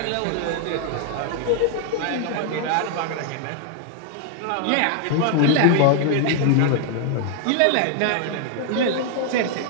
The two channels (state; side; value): different; both; correlation 0.00